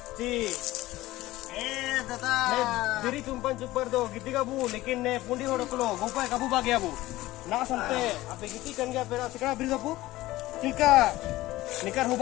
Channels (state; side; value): quieter; right; 17.3 dB